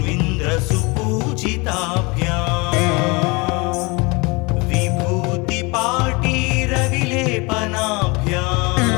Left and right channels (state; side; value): quieter; right; 26.9 dB